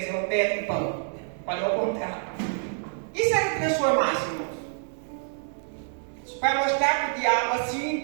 o pedra em pão. Falei ao contrário. E se ele transformasse, irmãos? Para mostrar para o diabo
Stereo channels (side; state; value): left; silent; 60 dB below the other